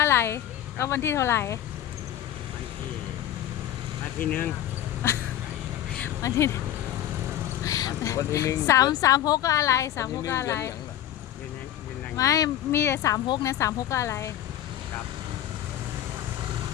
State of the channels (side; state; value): right; quieter; 12.1 dB